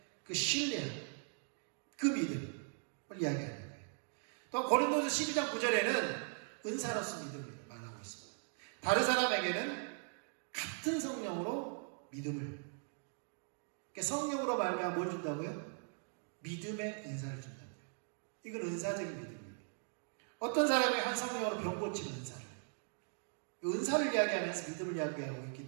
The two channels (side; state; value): left; silent; 51 dB below the other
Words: 그 신뢰, 그 믿음을 이야기하는 거예요. 또 고린도서 12장 9절에는 은사로서 믿음을 말하고 있습니다. 다른 사람에게는 같은 성령으로 믿음을, 그러니까 성령으로 말하면 뭘 준다고요? 믿음의 은사를 준다고요. 이건 은사적인 믿음이에요. 어떤 사람이 한 성령으로 병 고치는 은사를 이야기하면서 믿음을 이야기하고